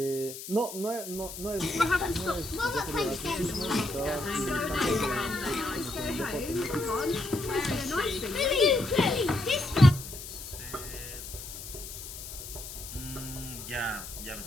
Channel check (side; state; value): left; noise; hiss, 11 dB below the sound